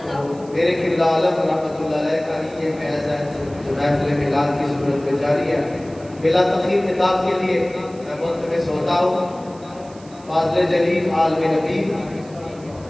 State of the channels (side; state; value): right; noise; hiss, 25 dB below the sound